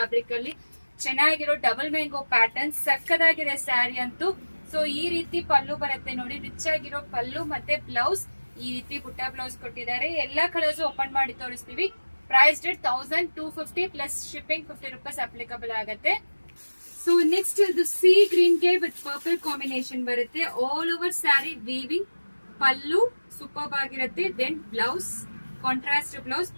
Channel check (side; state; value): both; inverted; correlation -1.00